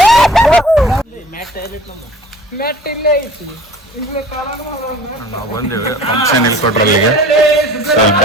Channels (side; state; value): both; normal; correlation 0.46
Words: ಮ್ಯಾಟ್ ಇಲ್ಲೇ ಐತಿ ಇಲ್ಲೇ ಕಾರಣ ನಾವು ಬಂದೇವೆ ಫಂಕ್ಷನ್ ಇಲ್ಲಿ ಕೊಟ್ರಲ್ಲಿಗೆ ಸ್ವಲ್ಪ